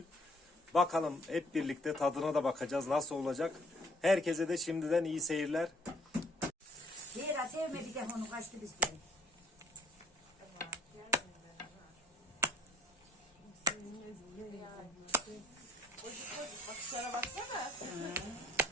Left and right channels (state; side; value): normal; both; correlation 0.60